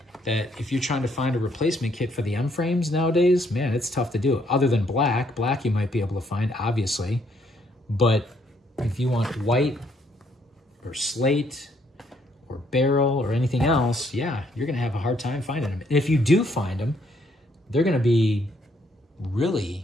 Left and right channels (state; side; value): normal; both; correlation 0.70